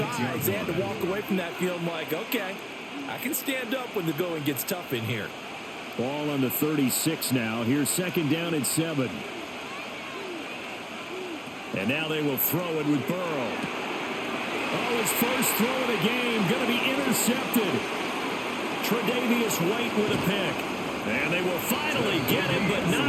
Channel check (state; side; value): identical; both; correlation 1.00